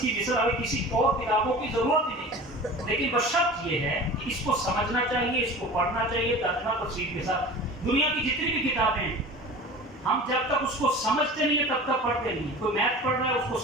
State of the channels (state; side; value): normal; both; correlation 0.38